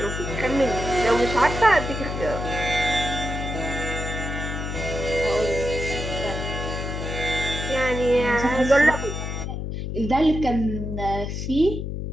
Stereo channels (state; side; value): noise; left; hum, 4 dB below the sound